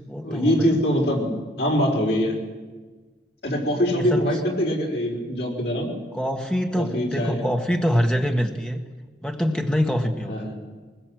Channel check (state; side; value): normal; both; correlation 0.69